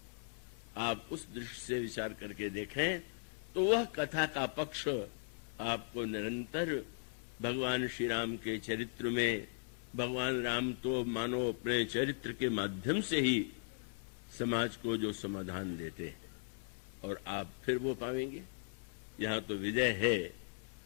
आप उस दृष्टि से विचार करके देखें तो वह कथा का पक्ष आपको निरंतर भगवान श्री राम के चरित्र में भगवान राम तो मानो अपने चरित्र के माध्यम से ही समाज को जो समाधान देते हैं, और आप फिर वो पाएंगे। यहां तो विजय है,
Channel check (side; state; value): right; silent; 52 dB below the other